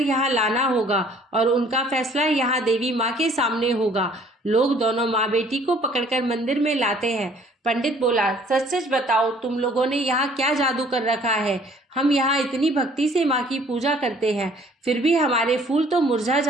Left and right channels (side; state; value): both; normal; correlation 0.57